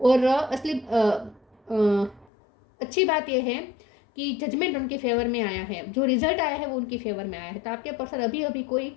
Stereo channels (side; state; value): right; drops out; at 2.2 s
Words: और असली अच्छी बात यह है कि जजमेंट उनके फेवर में आया है, जो रिजल्ट आया है वो उनकी फेवर में आया है। तो आपके पर्सन अभी अभी कोई